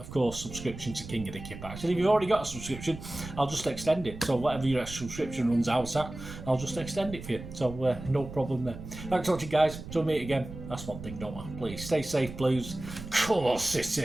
course, subscription to King of the Kippax. And if you've already got a subscription, I'll just extend it. So whatever your subscription runs out at, I'll just extend it for you. So no problem there. Thanks for watching, guys. Till we meet again. That's one thing, don't I? Please stay safe, Blues. Cool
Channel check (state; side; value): noise; right; rumble, 12 dB below the sound